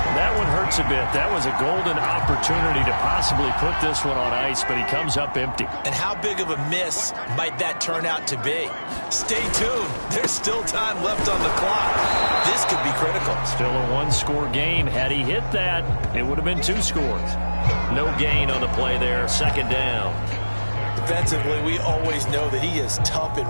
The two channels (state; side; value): inverted; both; correlation -1.00